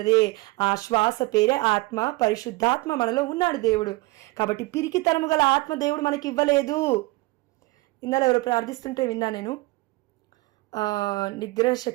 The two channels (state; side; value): quieter; left; 22.5 dB